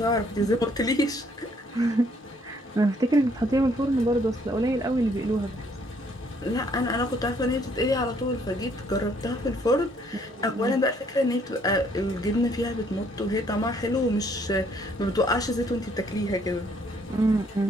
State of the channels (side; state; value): both; normal; correlation 0.65